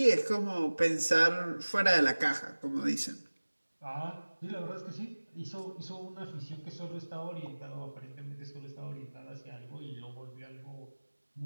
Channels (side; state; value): both; inverted; correlation -1.00